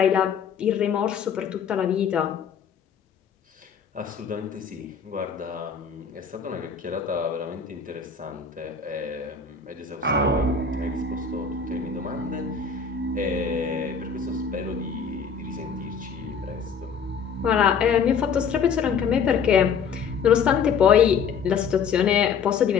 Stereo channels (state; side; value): quieter; right; 6.3 dB